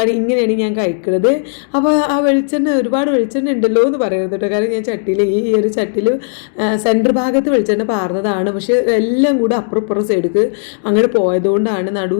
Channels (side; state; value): right; silent; digital silence